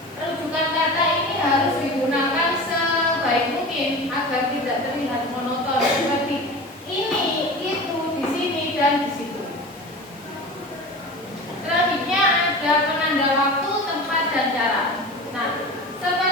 dan cara. Nah,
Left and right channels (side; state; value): both; normal; correlation 0.33